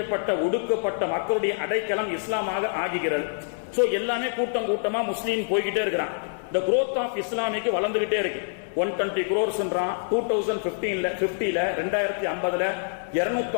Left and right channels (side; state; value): right; silent; digital silence